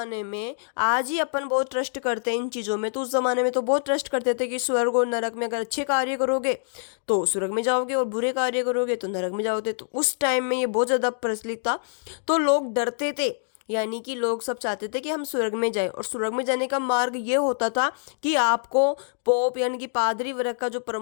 में, आज ही अपन बहुत ट्रस्ट करते हैं इन चीज़ों में, तो उस जमाने में तो बहुत ट्रस्ट करते थे कि स्वर्ग और नरक में अगर अच्छे कार्य करोगे तो स्वर्ग में जाओगे और बुरे कार्य करोगे तो नरक में जाओगे। तो उस टाइम में ये बहुत ज़्यादा प्रचलित था, तो लोग डरते थे यानी कि लोग सब चाहते थे कि हम स्वर्ग में जाएं, और स्वर्ग में जाने का मार्ग ये होता था कि आपको पोप यानी कि पादरी वर्ग का जो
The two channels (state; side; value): silent; right; digital silence